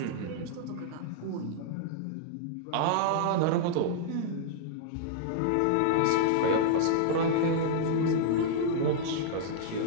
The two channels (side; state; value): both; different; correlation -0.01